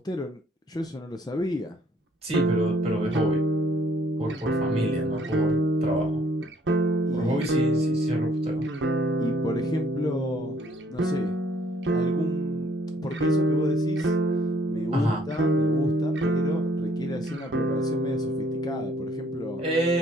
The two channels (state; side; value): normal; both; correlation 0.62